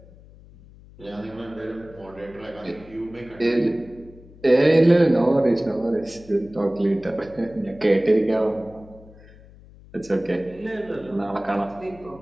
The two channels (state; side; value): noise; left; hum, 22 dB below the sound